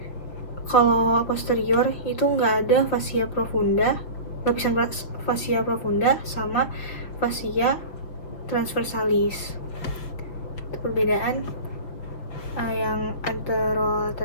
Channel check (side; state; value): right; late; 5.9 ms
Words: kalau posterior itu nggak ada fascia profunda, lapisan fascia profunda sama fascia transversalis. Itu perbedaan yang